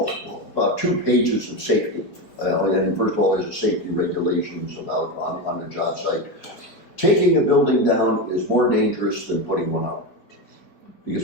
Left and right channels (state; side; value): late; right; 4.7 ms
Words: 2 pages of safety. And first of all, there's a safety regulations about on the job site. Taking a building down is more dangerous than putting one up.